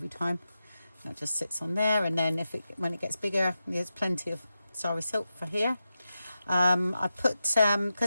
time. That just sits on there, and then when it gets bigger, there's plenty of sorry silk for here. I put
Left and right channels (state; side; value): inverted; both; correlation -0.90